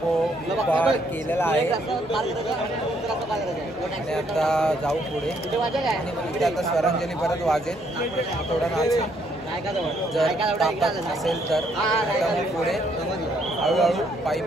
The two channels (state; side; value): normal; both; correlation 0.70